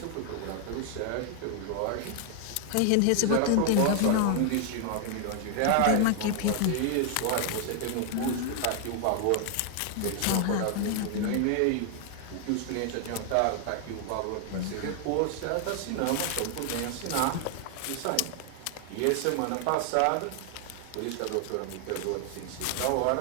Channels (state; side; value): different; both; correlation 0.00